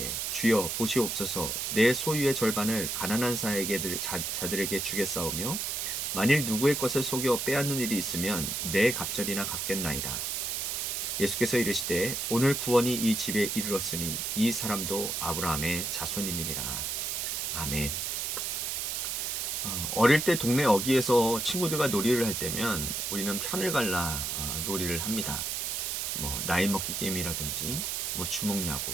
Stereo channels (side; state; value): right; noise; hiss, 1 dB below the sound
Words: 주여 보시옵소서. 내 소유의 절반을 가난한 자들에게 주겠사오며 만일 누구의 것을 속여 빼앗는 일이 있으면 내 갑절이나 갚겠나이다. 예수께서 이르시되 오늘 구원이 이 집에 이르렀으니 이 사람도 아브라함의 자손임이니라. 아멘. 어릴 때 동네 어귀에서 친구들과 놀이를 할 때면 우리는 편을 갈라 놀이를 합니다. 나이 먹기 게임이라든지 주먹야구,